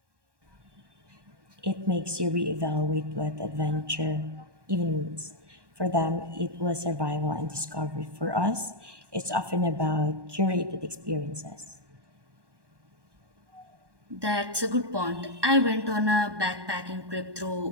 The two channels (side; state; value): left; late; 1.2 ms